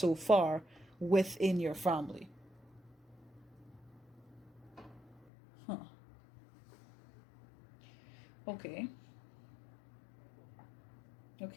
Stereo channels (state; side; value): drops out; right; at 5.2 s